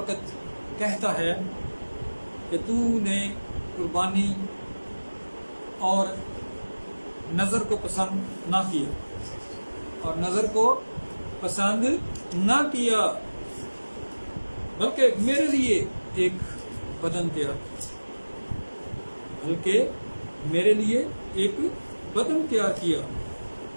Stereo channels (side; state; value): both; inverted; correlation -1.00